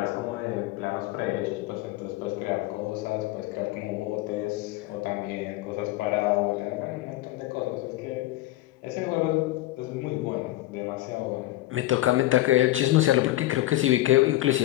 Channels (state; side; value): quieter; right; 16.4 dB